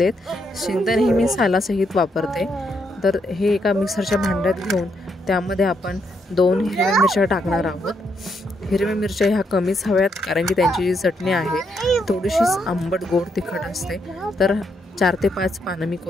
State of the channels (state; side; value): normal; both; correlation 0.77